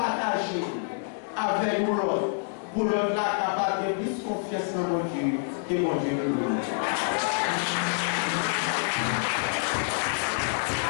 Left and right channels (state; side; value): silent; right; 60 dB below the other